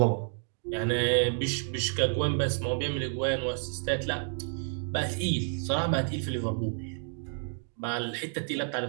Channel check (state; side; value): silent; left; 58 dB below the other